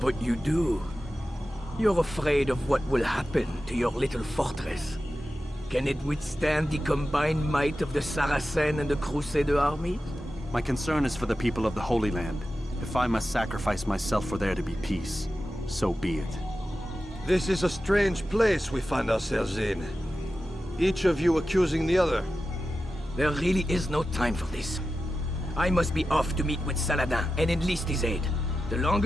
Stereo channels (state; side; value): normal; both; correlation 0.93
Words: you do. You're afraid of what will happen to your little fortress. Can it withstand the combined might of the Saracen and the Crusader armies? My concern is for the people of the Holy Land. If I must sacrifice myself for there to be peace, so be it. This is a strange place we find ourselves in. Each of you accusing the other. There really is no time for this. I must be off to meet with Saladin and enlist his aid. The